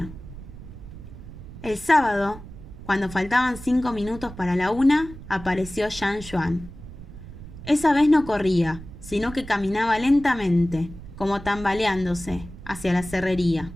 El sábado, cuando faltaban 5 minutos para la 1, apareció Jean Juan. Esa vez no corría, sino que caminaba lentamente, como tambaleándose, hacia la cerrería.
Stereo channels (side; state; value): right; noise; rumble, 14 dB below the sound